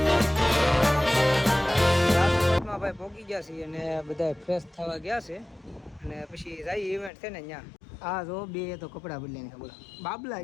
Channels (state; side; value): drops out; right; at 7.1 s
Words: રાજકોટમાં ભાઈ પહોંચી ગયા છીએ અને બધા ફ્રેશ થવા ગયા છે અને પછી જાય ઇવેન્ટ છે ને ત્યાં. આ જો બે તો કપડાં બદલાઈને બોલો બાબલા